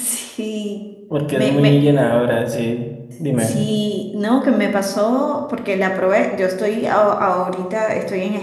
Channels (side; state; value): both; identical; correlation 1.00